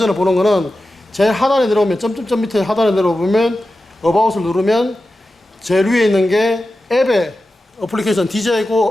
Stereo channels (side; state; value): both; normal; correlation 0.93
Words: 보는 거는 제일 하단에 내려오면, 점점점 밑에 하단에 내려오면 어바웃을 누르면 제일 위에 있는 게 앱의 어플리케이션